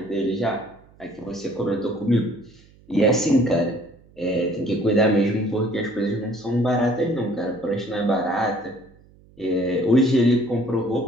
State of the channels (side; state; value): right; noise; hum, 27 dB below the sound